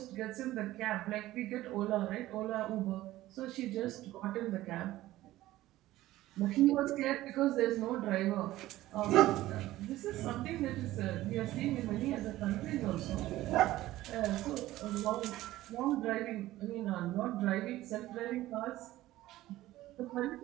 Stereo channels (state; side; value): quieter; left; 15.9 dB